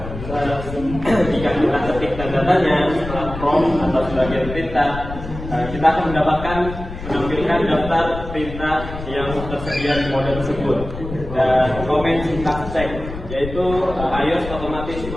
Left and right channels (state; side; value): noise; left; rumble, 9 dB below the sound